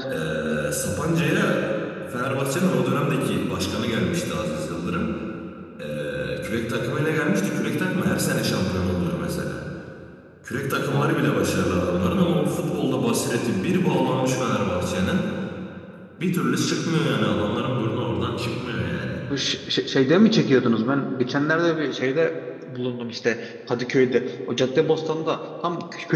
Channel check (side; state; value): both; identical; correlation 1.00